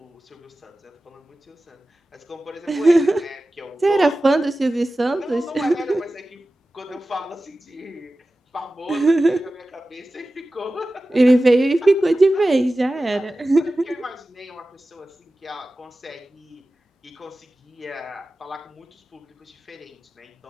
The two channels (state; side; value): normal; both; correlation 0.95